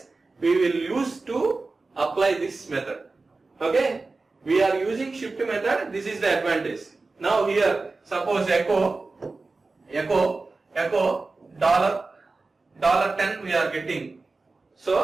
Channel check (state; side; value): quieter; left; 3.7 dB